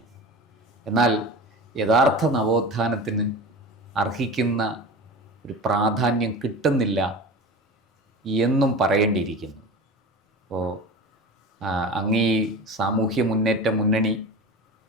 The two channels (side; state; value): both; normal; correlation 0.31